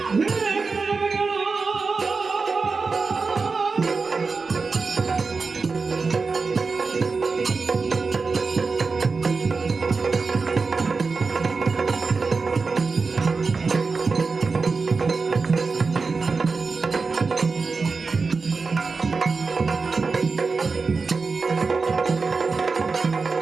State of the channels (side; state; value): left; quieter; 4.4 dB